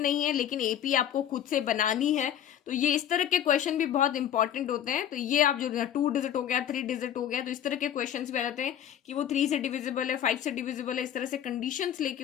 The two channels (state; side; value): quieter; right; 10.3 dB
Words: है लेकिन एपी आपको खुद से बनानी है। तो ये इस तरह के क्वेश्चन भी बहुत इंपॉर्टेंट होते हैं। तो ये आप जो 2 डिजिट हो गया, 3 डिजिट हो गया, तो इस तरह के क्वेश्चंस भी आ जाते हैं कि वो 3 से डिविजिबल है, 5 से डिविजिबल है, इस तरह से कंडीशंस